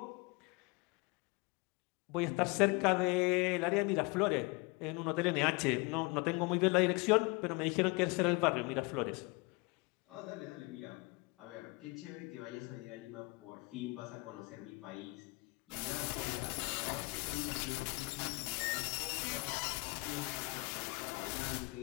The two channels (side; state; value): right; quieter; 27.3 dB